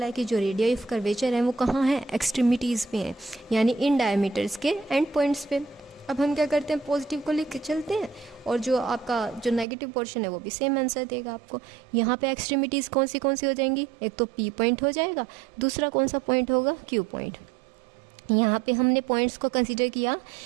है कि जो रेडियस ऑफ कर्वेचर है वो कहाँ है, एक्सट्रीमिटीज़ पे हैं, यानी इन डायमीटर्स के एंड पॉइंट्स पे। अब हम क्या करते हैं, पॉजिटिव को लिख के चलते हैं, और जो आपका जो नेगेटिव पोर्शन है वो भी सेम आंसर देगा आपको। यहाँ पे एक्सट्रीमिटीज़ कौन सी हो जाएंगी, एक तो P पॉइंट हो जाएगा, दूसरा कौन सा पॉइंट होगा, Q पॉइंट। यहाँ पे हमने पॉइंट्स को कंसीडर किया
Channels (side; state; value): left; drops out; at 9.7 s